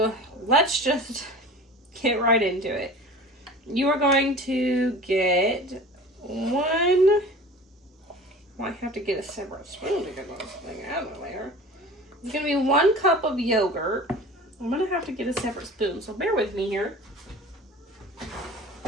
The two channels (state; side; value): normal; both; correlation 0.40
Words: let's just get right into it. You are going to get one, I have to get a separate spoon to get this thing out of there. It's going to be 1 cup of yogurt. I'm going to have to get a separate spoon, so bear with me here.